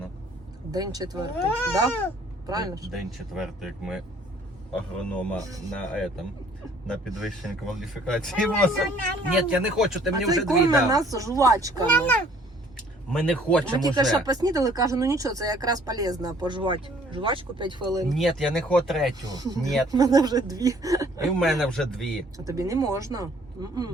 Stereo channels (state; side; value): normal; both; correlation 0.58